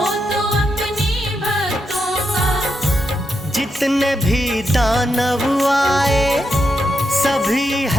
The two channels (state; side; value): normal; both; correlation 0.84